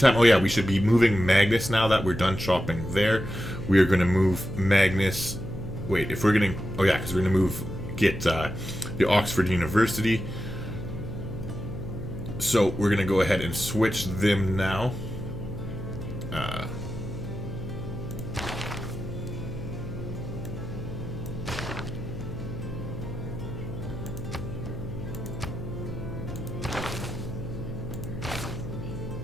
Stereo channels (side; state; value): left; noise; hum, 9 dB below the sound